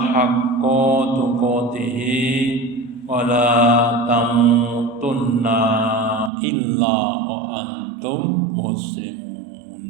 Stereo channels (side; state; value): left; drops out; at 6.3 s